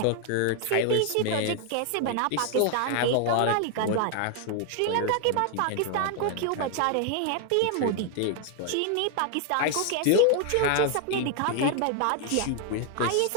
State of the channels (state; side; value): different; both; correlation 0.00